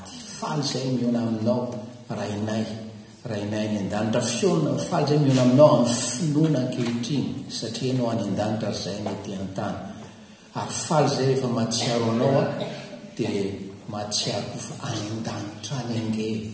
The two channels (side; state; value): both; identical; correlation 1.00